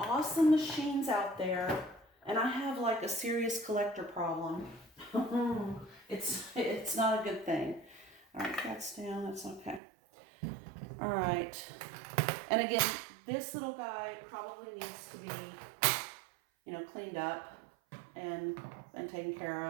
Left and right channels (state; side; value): drops out; left; at 9.8 s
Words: machines out there, and I have like a serious collector problem. It's not a good thing. All right, that's down. That's okay. All right. And again, this little guy probably needs to be, you know, cleaned up and taken care